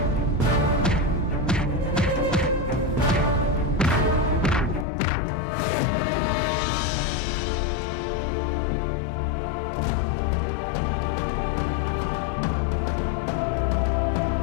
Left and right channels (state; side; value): drops out; right; at 4.9 s